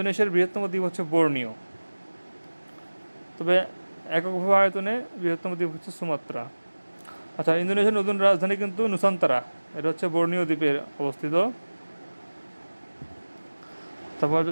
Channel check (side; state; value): both; inverted; correlation -1.00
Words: বৃহত্তম দ্বীপ হচ্ছে বোর্নিও। তবে এককভাবে আয়তনে বৃহত্তম দ্বীপ হচ্ছে সুমাত্রা। আচ্ছা, ইন্দোনেশিয়ার নতুন রাজধানী কিন্তু নুসান্তারা, এটা হচ্ছে বোর্নিও দ্বীপের অবস্থিত। তারপর